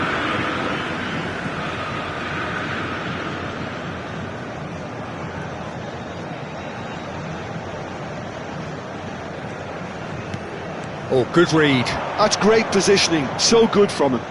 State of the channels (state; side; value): identical; both; correlation 1.00